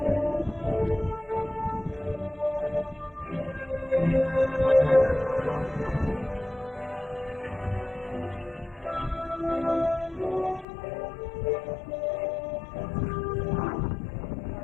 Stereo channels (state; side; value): drops out; right; at 10.7 s